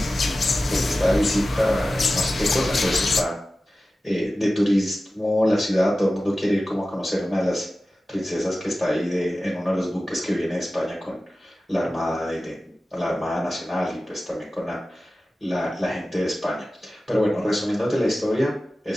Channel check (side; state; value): both; normal; correlation 0.95